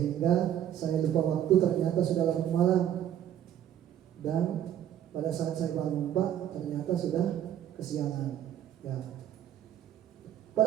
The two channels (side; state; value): left; quieter; 10.7 dB